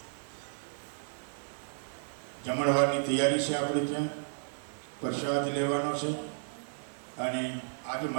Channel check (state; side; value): silent; left; digital silence